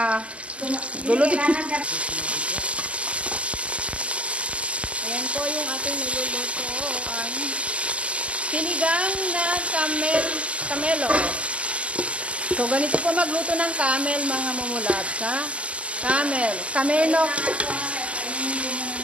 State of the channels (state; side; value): late; left; 0.059 ms